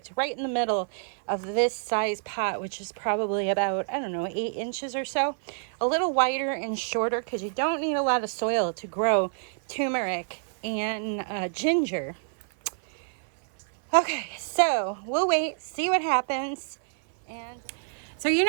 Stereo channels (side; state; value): left; silent; 56 dB below the other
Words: right in the middle of this size pot, which is probably about, I don't know, 8 inches or so. A little wider and shorter because you don't need a lot of soil to grow turmeric and ginger. Okay, so we'll wait, see what happens. And so you